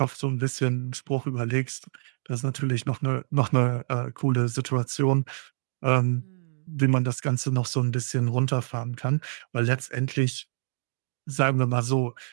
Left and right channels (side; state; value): left; silent; digital silence